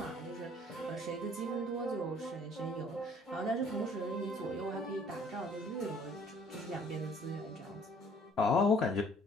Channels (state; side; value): normal; both; correlation 0.57